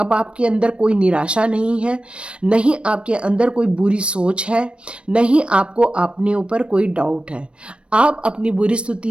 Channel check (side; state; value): left; late; 0.059 ms